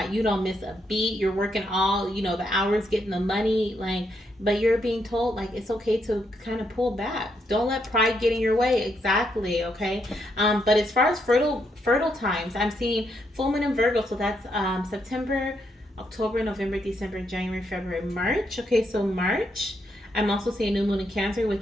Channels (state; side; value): normal; both; correlation 0.78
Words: you don't miss a beat. You're working all, the hours, getting the money, but you're being told like it's okay to kind of pull back. Don't let pride get in your way. Exactly, okay? But as far as fertile times, I'm seeing full moon in Virgo, so that's September, October, November, December, January, February, March. Okay, so March. I'm also seeing new moon in Cancer,